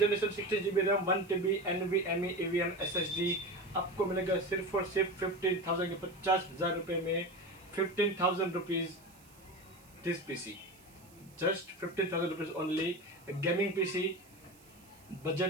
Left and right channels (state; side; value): noise; right; hiss, 26 dB below the sound